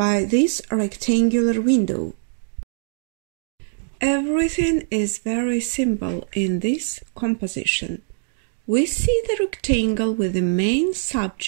this rectangular window. Everything is very simple in this composition. We see the rectangle with the main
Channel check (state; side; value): silent; left; digital silence